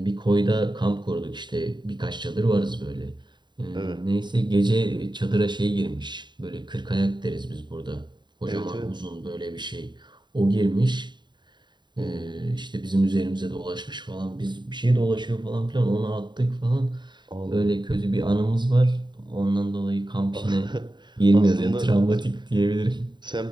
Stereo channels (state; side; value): late; left; 0.22 ms